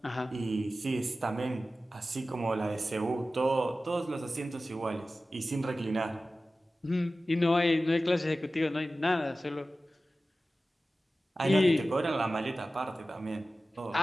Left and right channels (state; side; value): normal; both; correlation 0.95